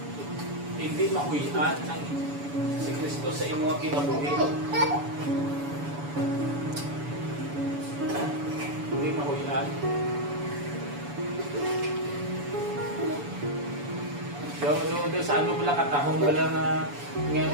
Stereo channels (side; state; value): left; late; 7.0 ms